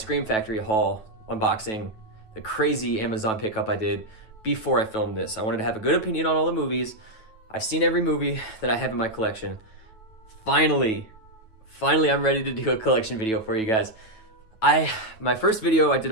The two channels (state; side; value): late; right; 9.2 ms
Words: Factory haul unboxing, the crazy Amazon pickup I did before I filmed this. I wanted to have a good opinion on all the movies. I've seen every movie that I have in my collection. Finally, I'm ready to do a collection video for you guys. My first video I did